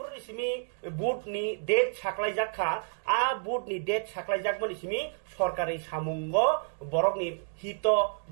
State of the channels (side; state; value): left; silent; digital silence